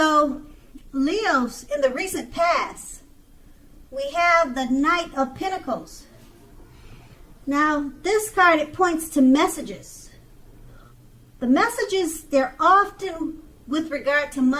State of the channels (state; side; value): identical; both; correlation 1.00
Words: Leos, in the recent past, we have the Knight of Pentacles. Now, this card, it points to messages. The messages, they're often with regard to